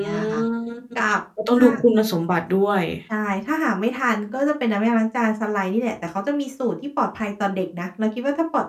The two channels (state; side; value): identical; both; correlation 1.00